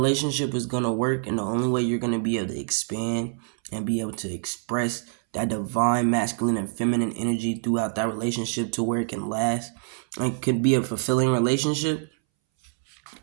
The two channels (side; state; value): left; silent; 61 dB below the other